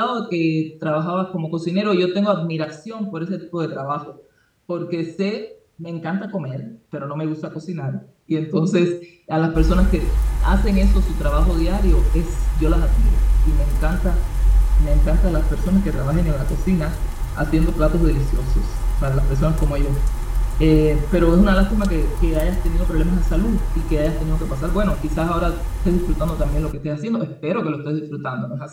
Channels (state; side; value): identical; both; correlation 1.00